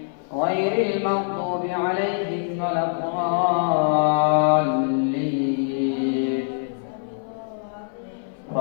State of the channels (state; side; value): silent; right; 58 dB below the other